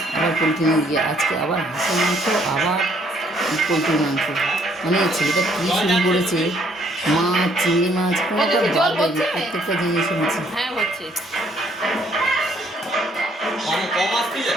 আবার পোলট্রি মুরগি, আজকে আবার হাঁসের মাংস, আবার পোলট্রির মাংস। মানে ছেলেটা কী শুরু করেছে, মাছ, চিংড়ি মাছ, কোনোটা বাদ দেয়নি, প্রত্যেকটা জিনিস এনেছে। হ্যাঁ হচ্ছে। কম আসছে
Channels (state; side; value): normal; both; correlation 0.65